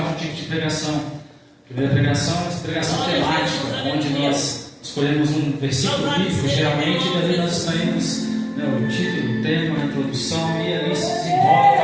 tipos de pregação. A primeira pregação é a pregação temática, onde nós escolhemos um versículo bíblico, geralmente, e ali nós escolhemos o título, o tema, a introdução, e ali se desenrola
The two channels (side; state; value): both; identical; correlation 1.00